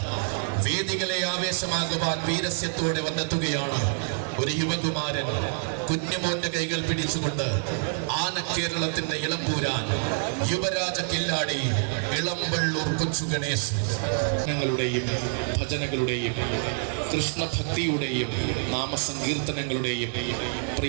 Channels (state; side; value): silent; left; 60 dB below the other